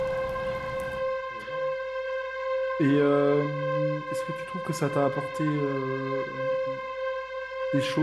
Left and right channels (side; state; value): left; noise; hum, 28 dB below the sound